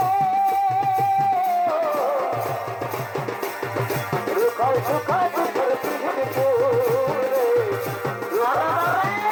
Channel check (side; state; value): both; identical; correlation 1.00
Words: রুখাই সুখাই দুঃখের পিড়িতে